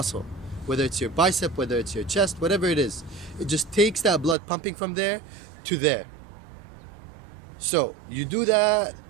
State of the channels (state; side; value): drops out; left; at 4.4 s